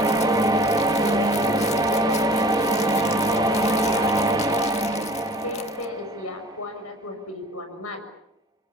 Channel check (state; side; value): normal; both; correlation 0.46